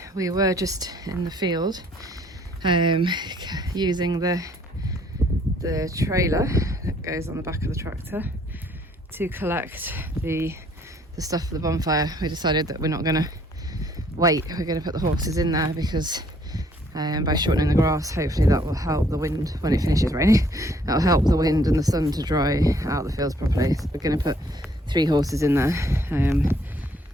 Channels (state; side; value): normal; both; correlation 0.64